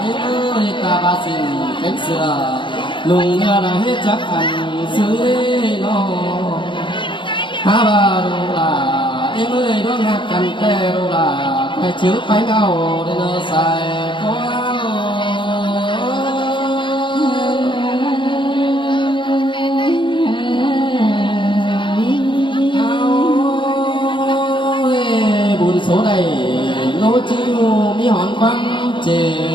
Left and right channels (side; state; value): right; late; 0.24 ms